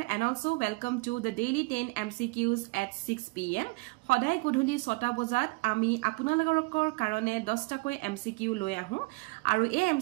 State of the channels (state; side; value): quieter; left; 27.3 dB